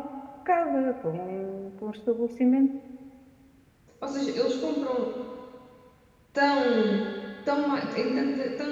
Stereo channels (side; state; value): both; identical; correlation 1.00